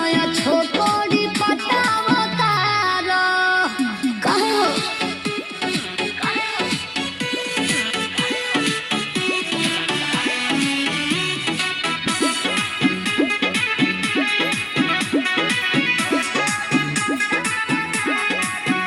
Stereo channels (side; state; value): both; identical; correlation 1.00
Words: छोकरी पटावतारा काहे हो